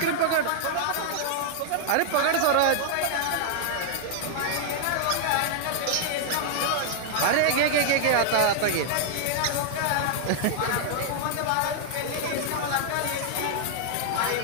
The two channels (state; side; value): different; both; correlation -0.01